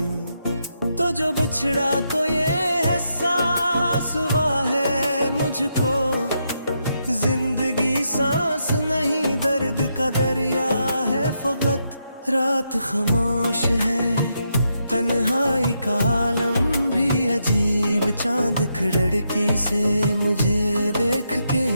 तो जो बिछड़ा तो ये एहसास हुआ है मुझको, जिंदगी सांस नहीं दर्द का दरिया है फकत। रात खामोश है, तन्हाई का आलम भी अजीब। चांद खिड़की से मुझे देख के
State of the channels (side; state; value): both; inverted; correlation -0.81